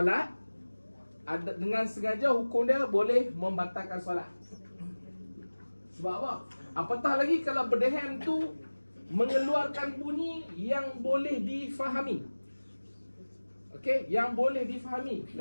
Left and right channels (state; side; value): inverted; both; correlation -1.00